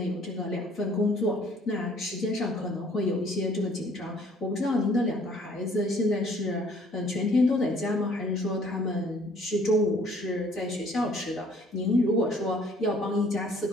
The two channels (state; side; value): normal; both; correlation 0.58